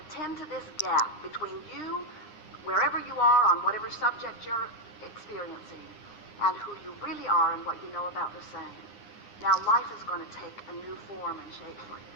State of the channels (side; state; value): right; late; 9.8 ms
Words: tend to this gap between you, wherever you are on whatever subject you're experiencing, and who you really are and what you know about the same, now life is going to take a new form and shape for you.